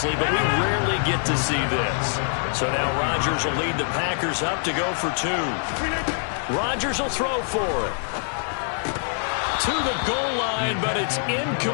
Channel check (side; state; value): right; silent; digital silence